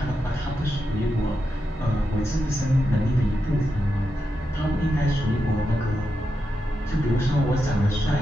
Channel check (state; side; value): normal; both; correlation 0.87